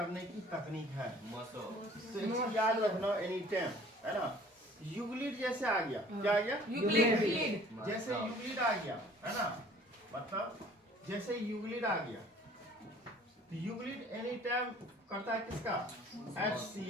की तकनीक है। तो एक चीज याद रखना एनी टाइम, है ना, यूक्लिड जैसे आ गया, क्या आ गया, यूक्लिड जैसे यूक्लिड आ गया, है ना, मतलब जैसे यूक्लिड आ गया, तो यूक्लिड एनी टाइम करता है किसका,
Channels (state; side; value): normal; both; correlation 0.51